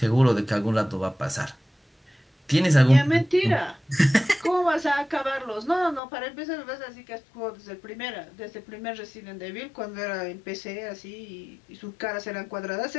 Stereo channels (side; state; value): right; drops out; at 6.0 s